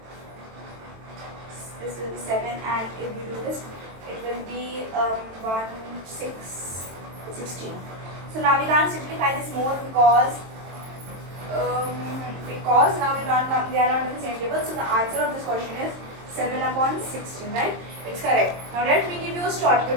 This will be 7, and if we do this, it will be 1, 6, 16. So now we can't simplify this more because now they are not in the same table. So the answer of this question is 7 upon 16, right? It's correct. Now let me give you a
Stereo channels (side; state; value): left; late; 23 ms